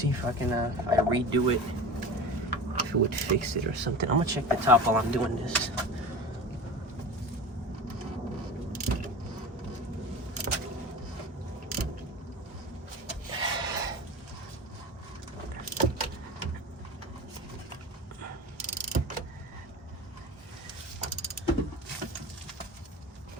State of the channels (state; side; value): normal; both; correlation 0.31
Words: if I can. If I redo it, if it would fix it or something. I'm gonna check the top while I'm doing this.